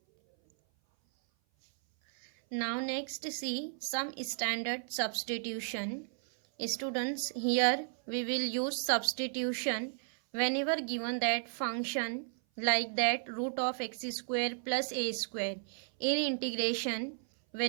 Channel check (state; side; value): silent; left; 55 dB below the other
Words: Now next see some standard substitution. Students, here we will use substitution whenever given that function like that root of x square plus a square. In integration,